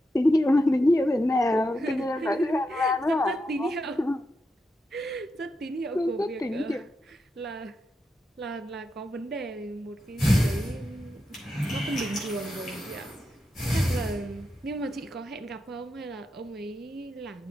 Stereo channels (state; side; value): normal; both; correlation 0.86